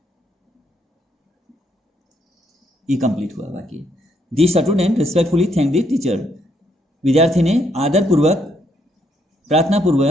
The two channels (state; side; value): normal; both; correlation 0.73